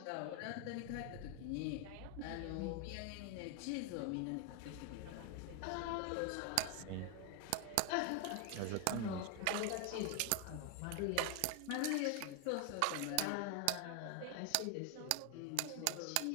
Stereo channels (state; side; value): different; both; correlation 0.01